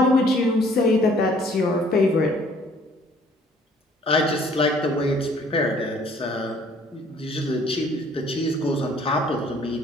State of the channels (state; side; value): normal; both; correlation 0.58